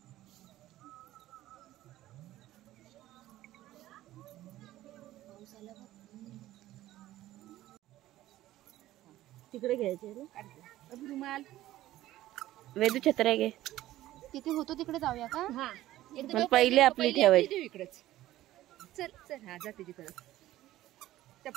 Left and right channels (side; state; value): left; quieter; 14.9 dB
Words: तिकडे घ्यायचे रुमाल. वेदू छत्र्या घे. तिथे होतो तिकडे जाऊया का. हा पण पहिले आपली ठेवायची. इकडेच. चल चल. हा जा तिकडे.